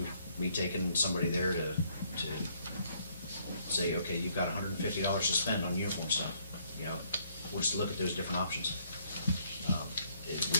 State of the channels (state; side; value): inverted; both; correlation -0.67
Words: me taking somebody there to say, okay, you've got $150 to spend on uniform stuff, you know, we'll just look at those different options. We